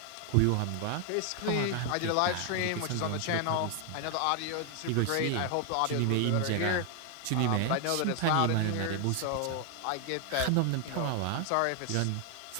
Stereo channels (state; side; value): different; both; correlation 0.00